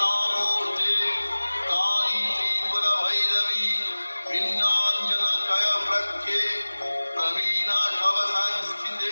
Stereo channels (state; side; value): inverted; both; correlation -1.00